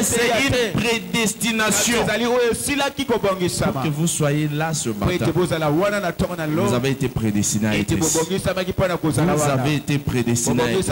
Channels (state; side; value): identical; both; correlation 1.00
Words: c'est une prédestination pour que vous soyez là ce matin. Vous avez été prédestiné à être ici. Vous avez été prédestiné à être ici.